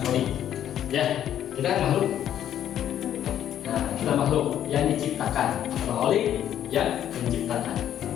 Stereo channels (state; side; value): quieter; right; 10.7 dB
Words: Khalik. Ya, kita kan makhluk. Nah, kita makhluk yang diciptakan, Khalik yang menciptakan.